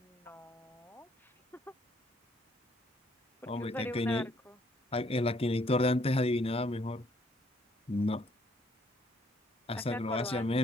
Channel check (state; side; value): normal; both; correlation 0.67